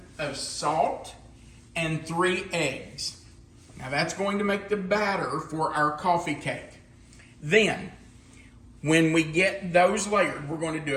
of salt. And 3 eggs. Now that's going to make the batter for our coffee cake. Then, when we get those layered, we're going to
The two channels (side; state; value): both; identical; correlation 1.00